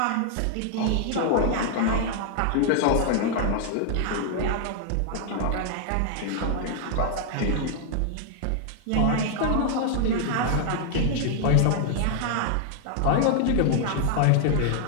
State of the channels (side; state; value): both; different; correlation 0.00